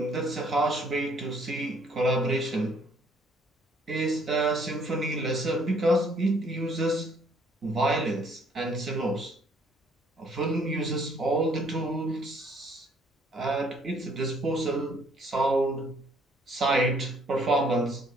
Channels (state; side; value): normal; both; correlation 0.62